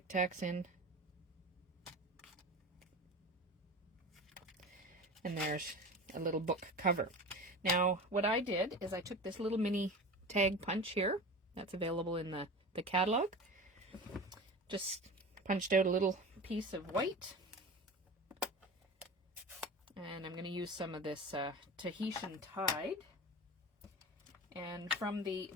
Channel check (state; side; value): normal; both; correlation 0.32